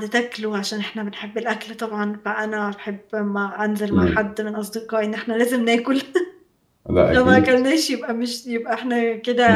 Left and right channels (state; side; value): identical; both; correlation 1.00